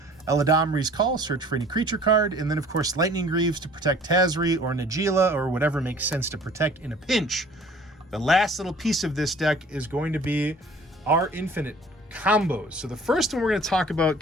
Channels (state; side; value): normal; both; correlation 0.51